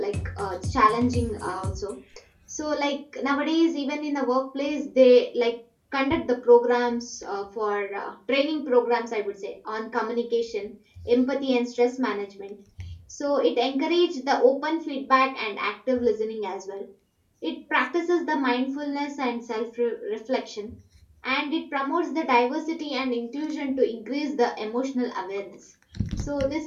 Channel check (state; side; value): identical; both; correlation 1.00